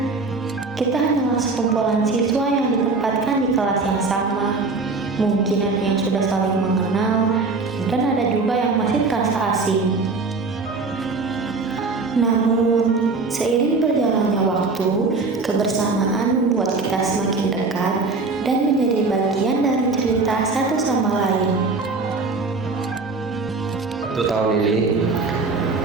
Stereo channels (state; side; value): quieter; left; 3.9 dB